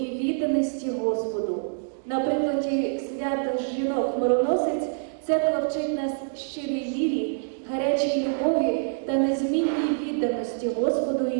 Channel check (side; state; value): left; silent; digital silence